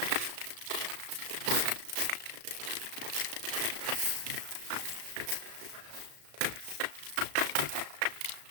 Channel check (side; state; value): left; late; 35 ms